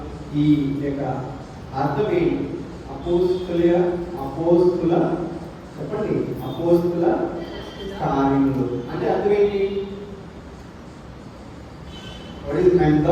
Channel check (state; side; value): identical; both; correlation 1.00